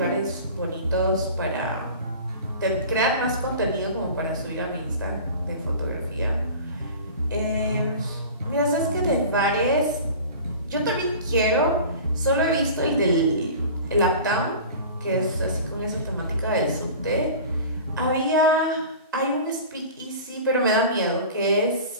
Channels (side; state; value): both; inverted; correlation -0.38